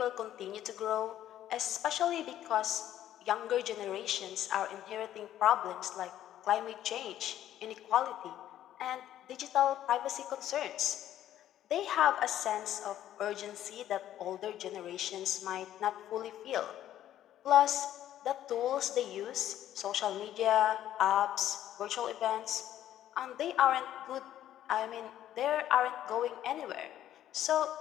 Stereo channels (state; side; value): quieter; right; 12.0 dB